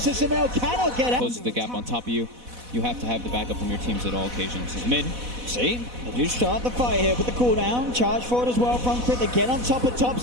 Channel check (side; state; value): left; late; 4.1 ms